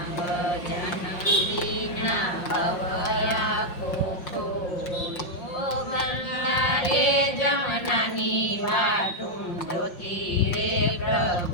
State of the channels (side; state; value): right; late; 5.6 ms